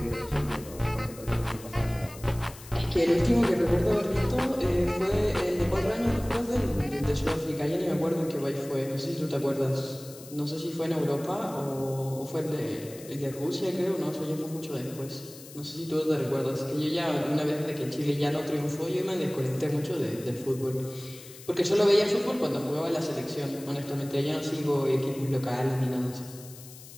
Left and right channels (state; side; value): noise; left; hiss, 17 dB below the sound